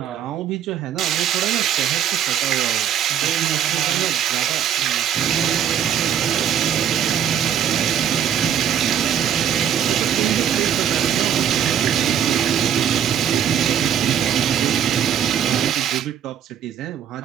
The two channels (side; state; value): left; quieter; 9.3 dB